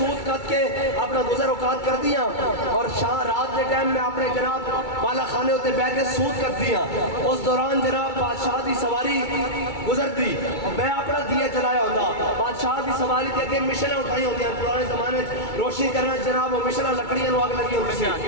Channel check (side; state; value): right; late; 2.3 ms